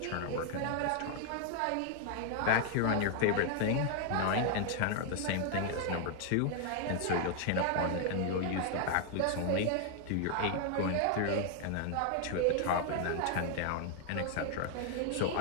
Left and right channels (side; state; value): both; different; correlation 0.00